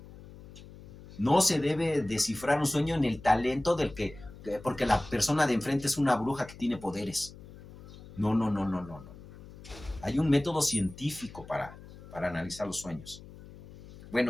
No se debe descifrar un sueño en el talento del que, porque la persona de enfrente es una bruja que tiene poderes. No, no, no, no, no, no. Hay un método científico para analizar los sueños.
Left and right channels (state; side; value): noise; left; hum, 18 dB below the sound